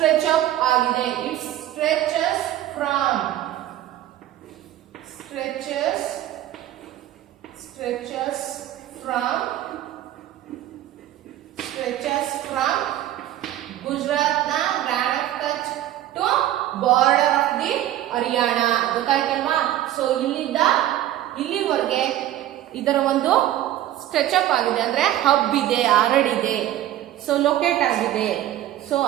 ಅಪ್ ಆಗಿದೆ. ಇಟ್ ಸ್ಟ್ರೆಚಸ್ ಫ್ರಮ್ ಗುಜರಾತ್ನ Rann of Kutch to border of the Haryana. ಗೊತ್ತಾಯ್ತಲ್ವಾ? ಸೊ ಇಲ್ಲಿಂದ ಇಲ್ಲಿವರೆಗೆ ಇದರ ಒಂದು ಸ್ಟ್ರೆಚ್ ಅಪ್ ಆಗಿದೆ, ಅಂದ್ರೆ ಹಬ್ ಇದೆ, ಹರಡಿದೆ, ಸೊ ಲೊಕೇಟ್ ಆಗಿದೆ. ಸೊ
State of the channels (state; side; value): quieter; left; 13.3 dB